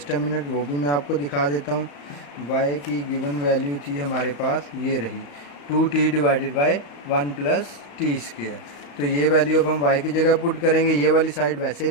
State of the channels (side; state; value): right; late; 35 ms